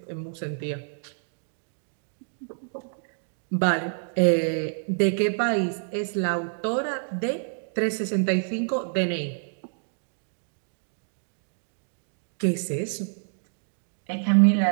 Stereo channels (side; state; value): left; silent; digital silence